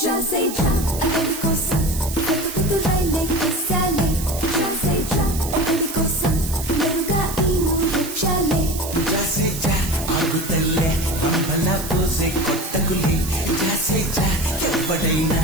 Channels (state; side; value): noise; right; hiss, 9 dB below the sound